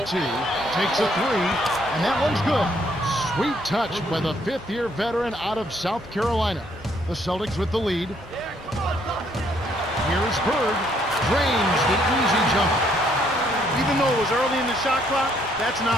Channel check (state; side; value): normal; both; correlation 0.69